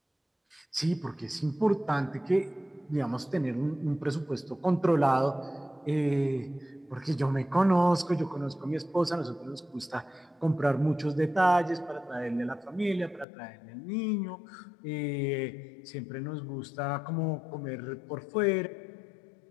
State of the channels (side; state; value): right; drops out; at 13.2 s